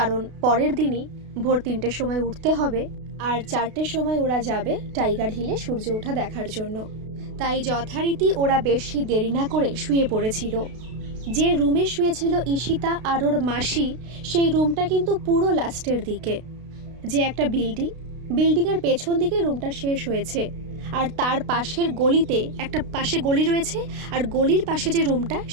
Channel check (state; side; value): late; left; 32 ms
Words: পরের দিনই ভোর 3টের সময় উঠতে হবে, আর 4টের সময় ওরা যাবে টাইগার হিলে সূর্য ওঠা দেখার জন্য। তাই যথারীতি ওরা বেশি দেরি না করে শুয়ে পড়েছিল। যে রুমে শুয়েছিল ঈশিতা আর ওর মাসি, সেই রুমটা কিন্তু পুরো লাস্টের দিকে, যে একটা বিল্ডিংয়ের পেছন দিকে রুমটা শেষ হয়েছে, আর তার পাশের গলিতে একটা পাশে গলি রয়েছে, আর গলির পাশে যে রুমটা,